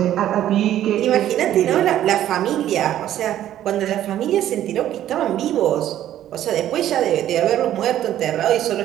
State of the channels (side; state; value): left; quieter; 12.1 dB